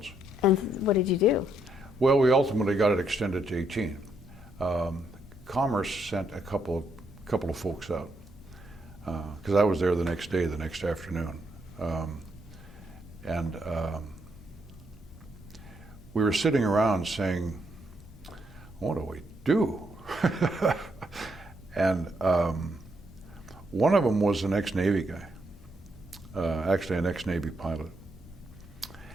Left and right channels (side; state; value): both; normal; correlation 0.76